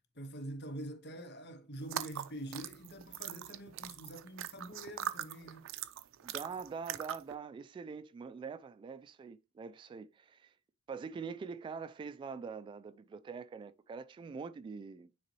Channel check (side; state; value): left; quieter; 5.4 dB